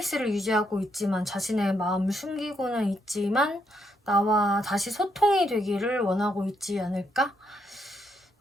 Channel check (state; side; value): normal; both; correlation 0.76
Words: 유지하고 있지만 자신의 마음을 숨기고는 있지만 나와 다시 소통이 되기를 원하고 있지 않을까?